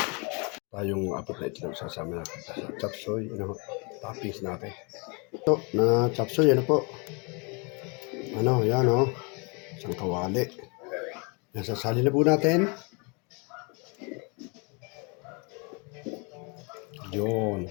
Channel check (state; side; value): quieter; right; 32.2 dB